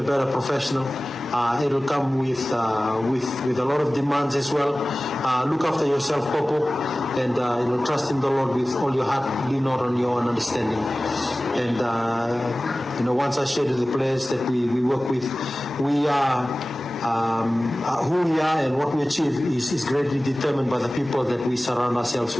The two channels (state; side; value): normal; both; correlation 0.97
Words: better professional. It'll come with a lot of demands as well. Look after yourself, Popo, and you know, trust in the Lord with all your heart. Lean not on your own understanding. And you know, once I shared with the players that we work with, we are. Who we are and what we achieve is greatly determined by the people that we surround ourselves